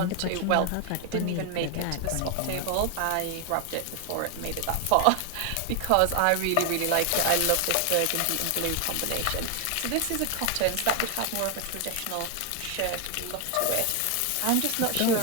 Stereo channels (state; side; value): different; both; correlation 0.01